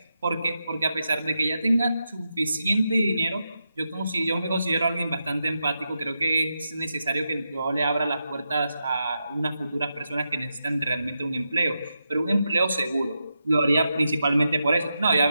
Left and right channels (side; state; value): both; inverted; correlation -0.87